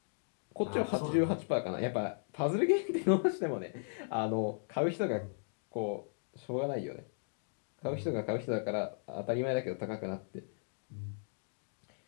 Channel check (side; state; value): right; silent; digital silence